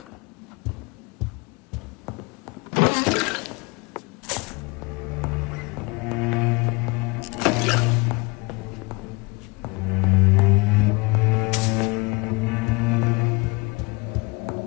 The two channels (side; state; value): right; quieter; 27.3 dB